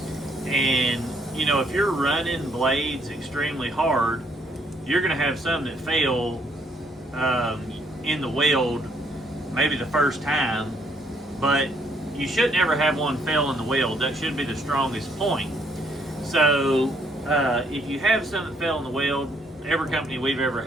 And, if you're running blades extremely hard, you're going to have some that fail in the weld maybe the first time, but you should never have one fail in the weld. That should be the strongest point. So if you have some that fail in the weld, every company we've ever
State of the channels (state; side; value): normal; both; correlation 0.69